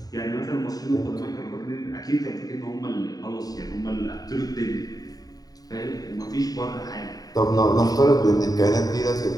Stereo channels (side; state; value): right; late; 0.18 ms